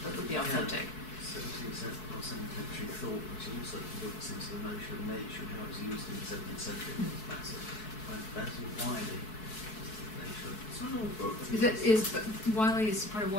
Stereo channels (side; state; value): right; late; 4.6 ms